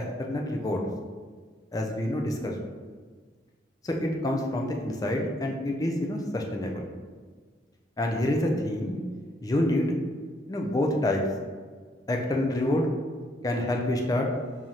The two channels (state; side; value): normal; both; correlation 0.71